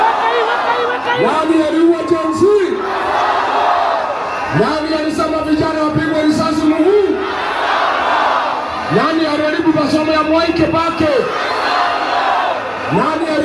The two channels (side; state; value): both; identical; correlation 1.00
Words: Nani aliua Jensi? Nani alisema vijana wapigwe risasi mguu? Nani aliharibu masomo ya Mwai Kibaki? Nani